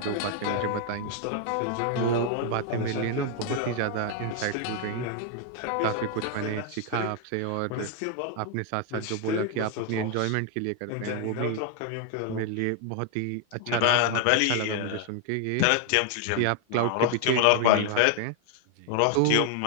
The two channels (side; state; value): both; different; correlation 0.00